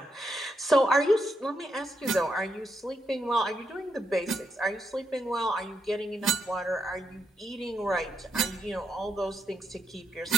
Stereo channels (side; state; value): both; normal; correlation 0.81